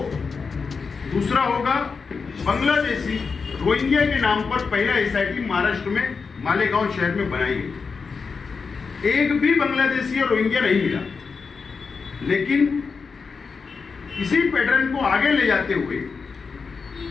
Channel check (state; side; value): quieter; right; 5.1 dB